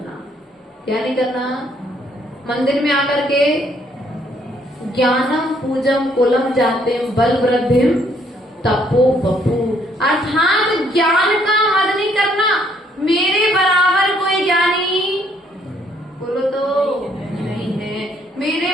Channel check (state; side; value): normal; both; correlation 0.67